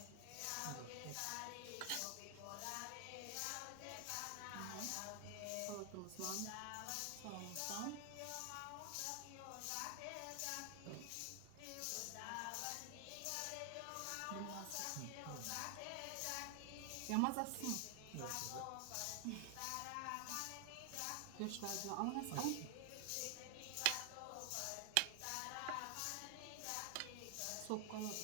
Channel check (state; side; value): different; both; correlation 0.00